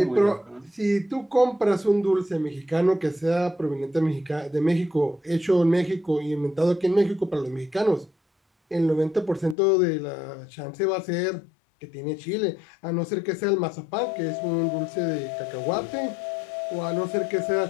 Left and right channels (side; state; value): right; drops out; at 9.6 s